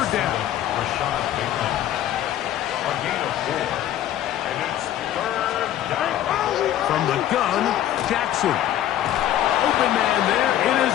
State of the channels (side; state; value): right; quieter; 12.0 dB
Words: down. A gain of 4. And it's 3rd down. From the gun, Jackson. Open man there. It is